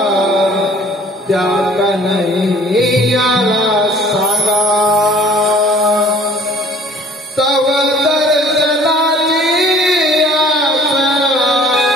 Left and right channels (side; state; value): both; normal; correlation 0.52